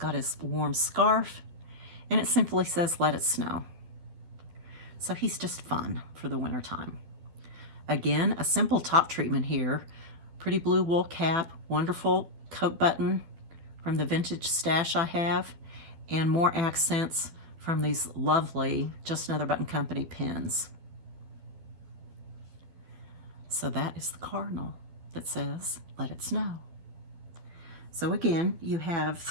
his warm scarf, and it simply says, "Let it snow." So he's just fun for the winter time. Again, a simple top treatment here. Pretty blue wool cap, wonderful coat button from the vintage stash I have, and more accents from these lovely Just Another Button Company pins. So that is the cardinal that says, "Let it snow." So again, you have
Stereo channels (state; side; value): late; left; 12 ms